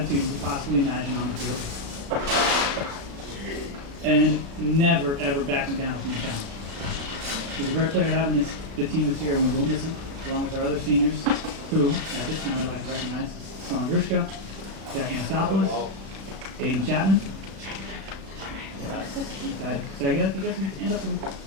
you could possibly imagine on the field, and never, ever backing down from the challenge. He's a great player to have in the team this year, and we will miss him, along with our other seniors, who, at this time, I'd like to recognize Sean Grishka, Jack Anastopoulos, Aiden Chapman. Say again, you guys can stand up and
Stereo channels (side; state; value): left; late; 36 ms